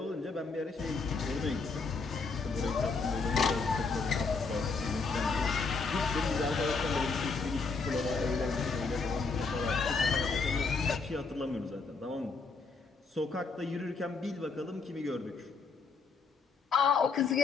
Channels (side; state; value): right; quieter; 4.4 dB